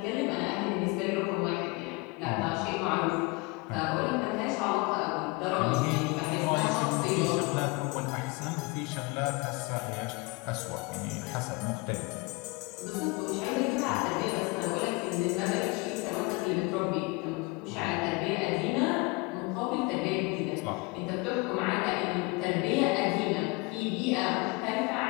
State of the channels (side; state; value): right; quieter; 26.8 dB